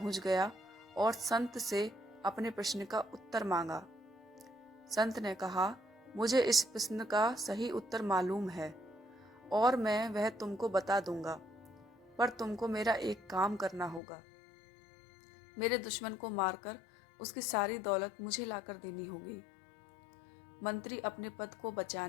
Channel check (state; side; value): drops out; right; at 14.0 s